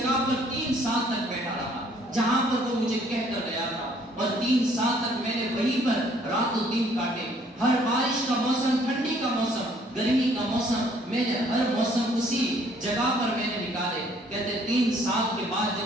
پر 3 سال تک بیٹھا رہا جہاں پر وہ مجھے کہہ کر گیا تھا، اور 3 سال تک میں نے وہیں پر رات و دن کاٹے۔ ہر بارش کا موسم، ٹھنڈی کا موسم، گرمی کا موسم، میں نے ہر موسم اسی جگہ پر میں نے نکالے۔ کہتے 3 سال کے بعد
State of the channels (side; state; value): both; normal; correlation 0.62